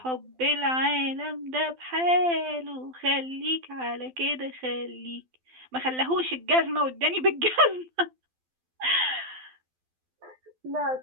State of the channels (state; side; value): late; left; 12 ms